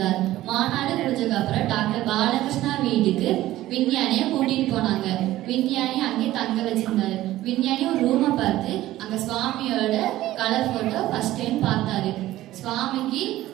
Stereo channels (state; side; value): quieter; left; 15.3 dB